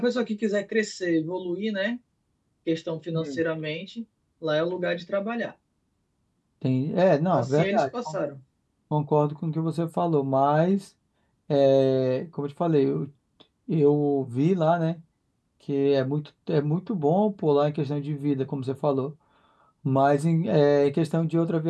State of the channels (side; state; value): both; identical; correlation 1.00